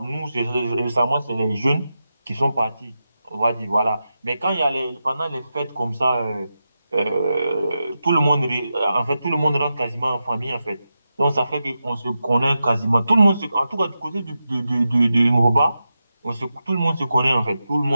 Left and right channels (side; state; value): both; inverted; correlation -0.90